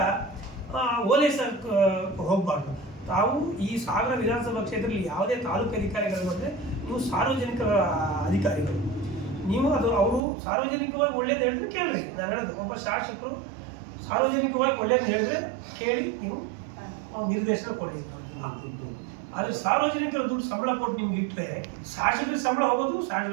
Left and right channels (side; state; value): left; drops out; at 10.2 s